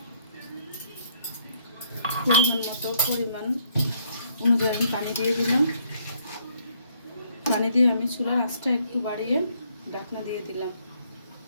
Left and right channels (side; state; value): both; inverted; correlation -0.69